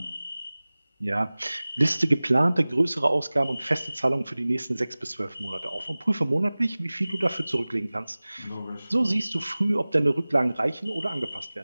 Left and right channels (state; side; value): inverted; both; correlation -0.99